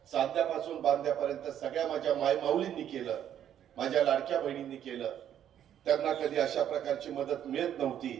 सांध्यापासून बांध्यापर्यंत सगळ्या माझ्या मायमाऊलींनी केलं, माझ्या लाडक्या बहिणींनी केलं. त्यांना कधी अशा प्रकारची मदत मिळत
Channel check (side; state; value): left; quieter; 10.2 dB